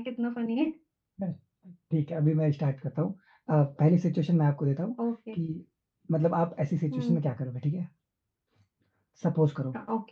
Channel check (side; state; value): both; identical; correlation 1.00